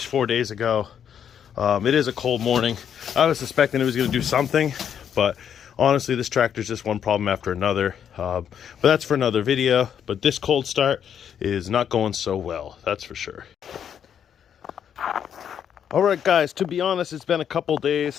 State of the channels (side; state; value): right; quieter; 8.6 dB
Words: 4 days ago. It is a cold morning. I was suspecting it was gonna do something, but honestly, this tractor's just one problem after another. But that's for another video. But this cold start is not going so well, that's for sure. All right, guys, to be honest, it's been a couple